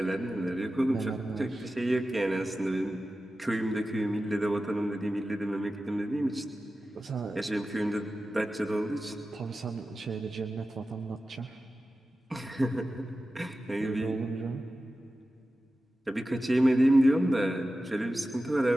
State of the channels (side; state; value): both; normal; correlation 0.94